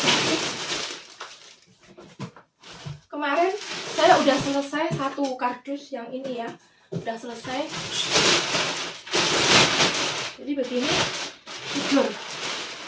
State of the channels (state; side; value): identical; both; correlation 1.00